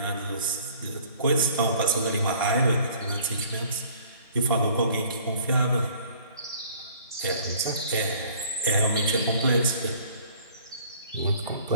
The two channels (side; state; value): both; inverted; correlation -0.54